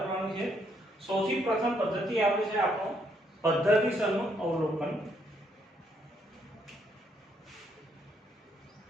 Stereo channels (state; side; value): normal; both; correlation 0.72